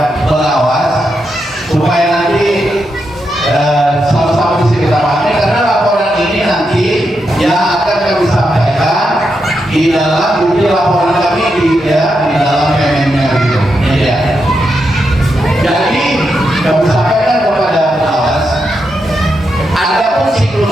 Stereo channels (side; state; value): both; normal; correlation 0.84